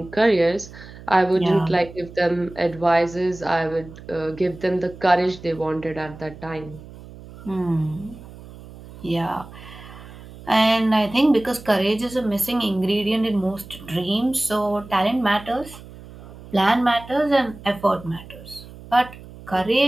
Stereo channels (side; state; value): right; noise; hum, 17 dB below the sound